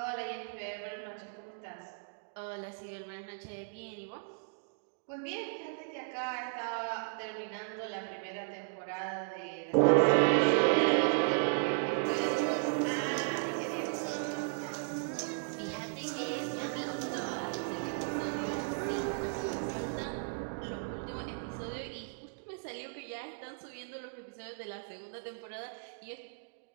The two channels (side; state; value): left; silent; digital silence